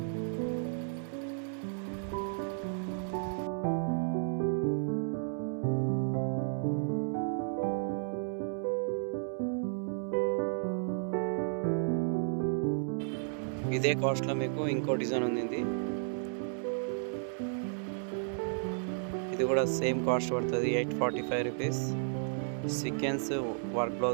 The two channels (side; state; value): left; silent; digital silence